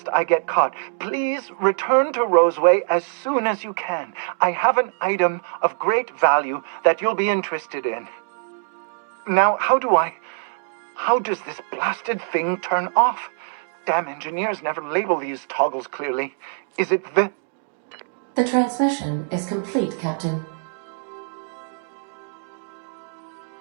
I get caught. Please return to Roseway as soon as you can. I have an item of great value that you'll be interested in. Now, how does this blasted thing turn off? Damn engineers never label these toggles clearly. Is it the... The transmission is complete, Captain.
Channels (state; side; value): silent; left; digital silence